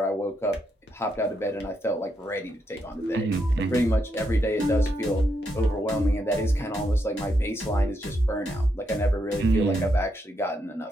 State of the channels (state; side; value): normal; both; correlation 0.80